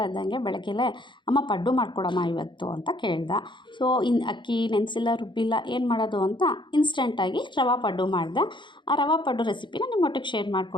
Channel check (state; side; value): late; right; 0.23 ms